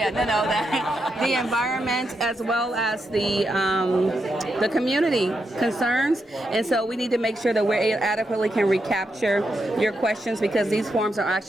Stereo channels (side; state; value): both; normal; correlation 0.84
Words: environment, as well as the community concerns. And so we need to make sure that we adequately can recapture your questions, because these forms are